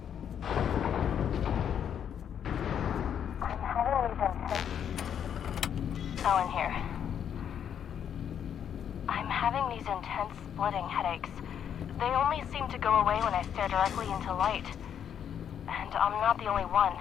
Ellen here. I'm having these intense splitting headaches. They only seem to go away when I stare directly into light. And I'm not the only one.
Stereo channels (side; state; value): right; quieter; 8.7 dB